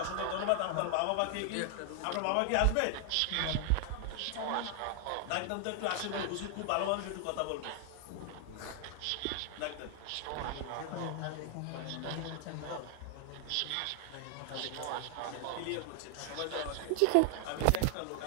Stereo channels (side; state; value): both; different; correlation 0.00